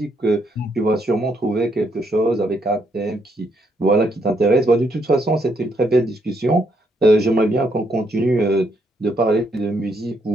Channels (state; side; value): normal; both; correlation 0.74